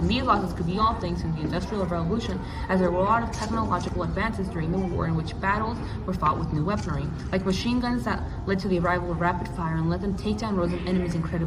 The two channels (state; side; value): identical; both; correlation 1.00